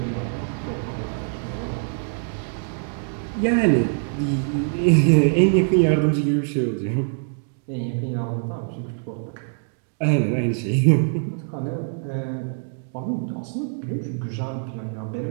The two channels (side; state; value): left; silent; 63 dB below the other